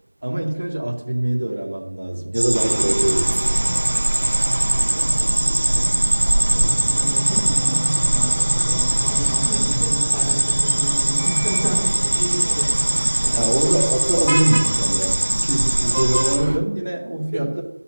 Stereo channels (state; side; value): inverted; both; correlation -1.00